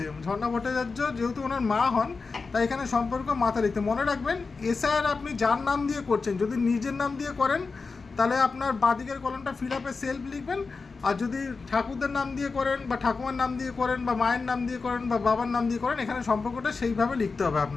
ঝর্ণা ভট্টাচার্য যেহেতু ওনার মা হন, তাই এখানে সম্পর্ক মাথা লিখতে। মনে রাখবেন, এসআইআর আপনি যার নাম দিয়ে করছেন, যদি নিজের নাম দিয়ে করেন তাহলে আপনার বাঁদিকের কলমটা ফিল আপে সেলফ লিখবেন, আর যদি ঠাকুরদের নাম দিয়ে করেন বা ঠাকুমার নাম দিয়ে করেন বা মায়ের নাম দিয়ে করেন বা বাবার নাম দিয়ে করেন, এখানে সম্পর্কটা সেইভাবে লিখতে হবে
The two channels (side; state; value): right; quieter; 4.4 dB